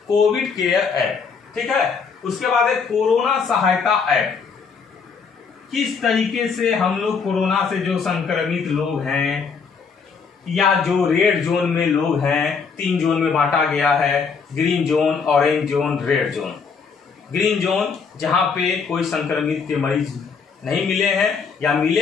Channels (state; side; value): quieter; right; 5.6 dB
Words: कोविड केयर ऐप। ठीक है, उसके बाद है कोरोना सहायता ऐप। किस तरीके से हम लोग कोरोना से जो संक्रमित लोग हैं या जो रेड जोन में लोग हैं, 3 जोन में बांटा गया है, green zone, orange zone, red zone. Green zone जहां पे कोई संक्रमित के मरीज नहीं मिले हैं या